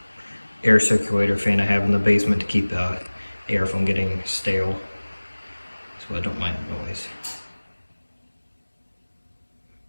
air circulator fan I have in the basement to keep air from getting stale, so I don't mind the noise.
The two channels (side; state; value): both; inverted; correlation -1.00